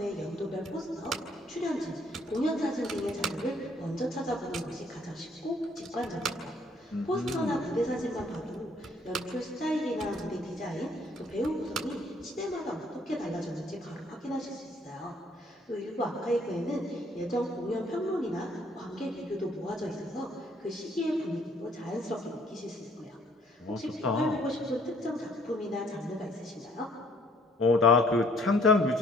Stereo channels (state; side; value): normal; both; correlation 0.62